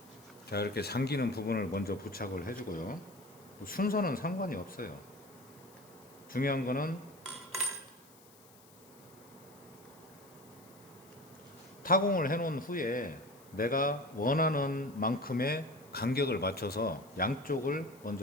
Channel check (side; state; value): left; noise; hiss, 25 dB below the sound